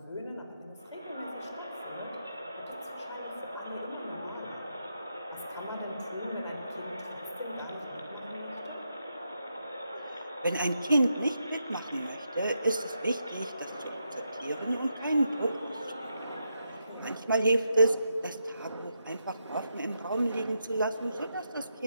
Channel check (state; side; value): inverted; both; correlation -0.83